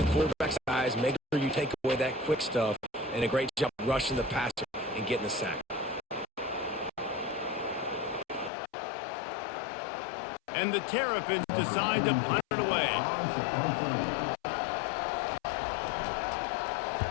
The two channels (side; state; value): right; drops out; at 8.5 s